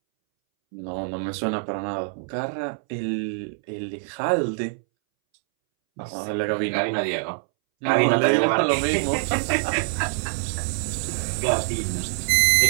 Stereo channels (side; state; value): left; silent; 62 dB below the other